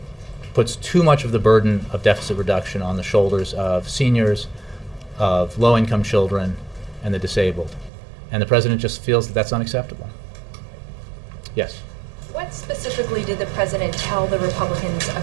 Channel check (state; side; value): drops out; left; at 7.9 s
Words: puts too much of the burden of deficit reduction on the shoulders of seniors, of low-income children, and the disabled. And the President just feels that that's unacceptable. Yes? What specifically did the President tell the Republicans